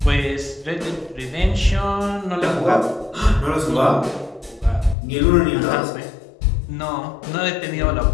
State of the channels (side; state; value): right; drops out; at 5.0 s